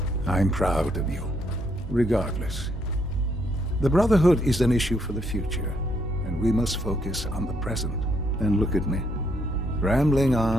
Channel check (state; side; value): normal; both; correlation 0.73